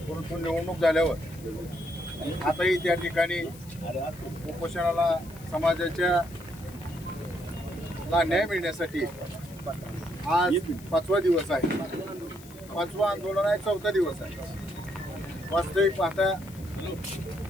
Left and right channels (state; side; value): noise; left; hiss, 21 dB below the sound